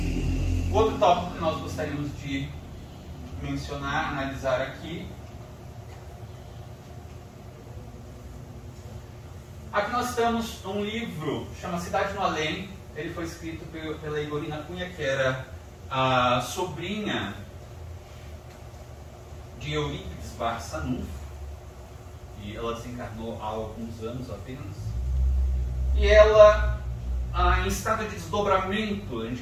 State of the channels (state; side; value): identical; both; correlation 1.00